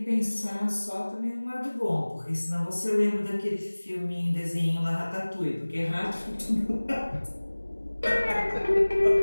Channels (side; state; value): both; inverted; correlation -1.00